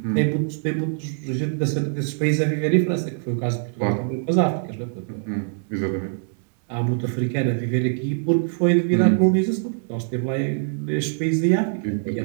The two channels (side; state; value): left; silent; digital silence